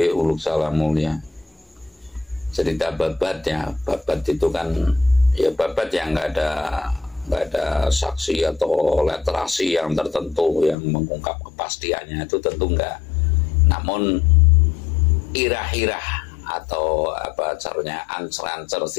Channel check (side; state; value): right; drops out; at 10.8 s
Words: uluk salam mulia. Cerita babatnya, babat itu kan ya babat yang nggak ada saksi atau literasi yang tertentu yang mengungkap kepastiannya, itu tentu enggak. Namun irah-irah atau apa caranya ancer-ancer,